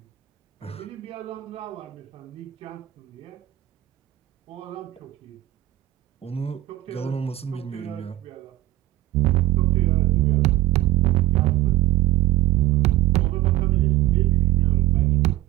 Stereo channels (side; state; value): left; quieter; 16.1 dB